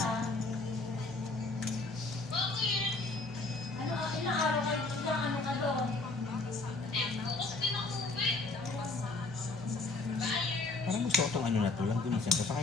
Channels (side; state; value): right; quieter; 3.3 dB